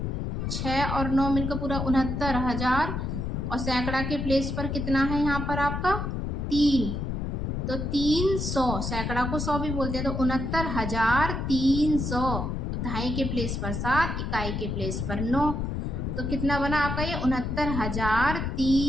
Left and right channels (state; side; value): noise; left; rumble, 2 dB below the sound